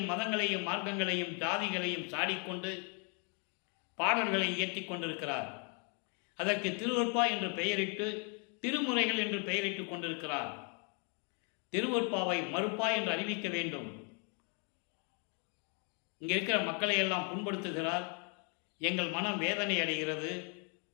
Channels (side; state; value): right; quieter; 37.9 dB